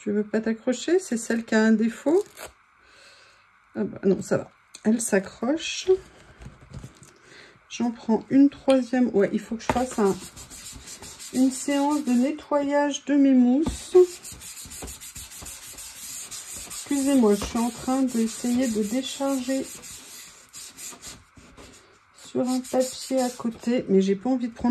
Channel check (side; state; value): both; identical; correlation 1.00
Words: veux pas t'accrocher? C'est celle qui a un défaut. Ah bah, non, ça va. Elle s'accroche. J'en prends une troisième. Ouais, il faut que je fasse une séance de nettoyage de mes mousses. Excusez-moi, je suis en train d'essayer de décharger sur un papier à côté, mais j'ai pas envie de